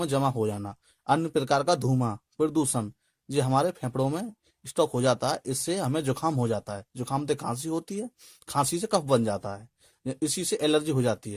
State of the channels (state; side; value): identical; both; correlation 1.00